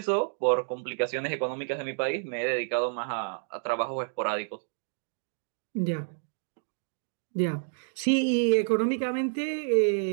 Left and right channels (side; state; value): left; silent; digital silence